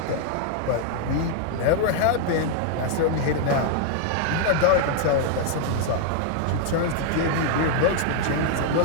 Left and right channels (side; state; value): both; different; correlation 0.00